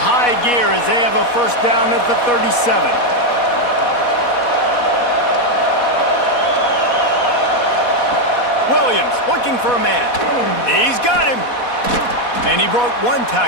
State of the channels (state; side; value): late; right; 4.1 ms